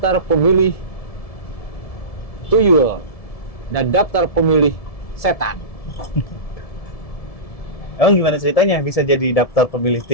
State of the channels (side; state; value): right; late; 1.7 ms